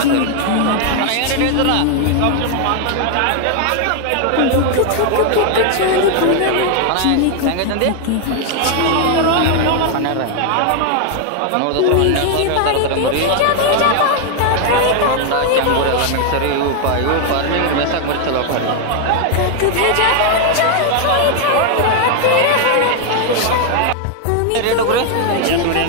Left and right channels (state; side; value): different; both; correlation 0.00